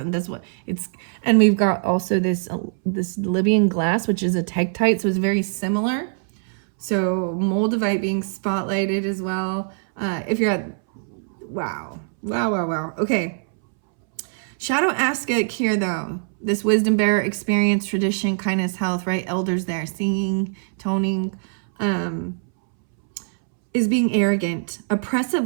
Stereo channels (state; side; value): silent; left; 63 dB below the other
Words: what it's, and we've got also this Libyan glass, which is a tektite, so it's very similar. So Moldavite being spotlighted as well. If you're at, wow. Okay. Shadow Askek here, though. This wisdom bearer, experience, tradition, kindness, health, right? Elders there, singing, toning, is being arrogant,